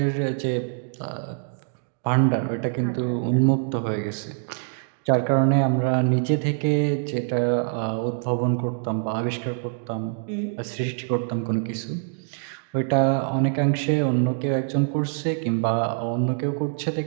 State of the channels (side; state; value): left; silent; digital silence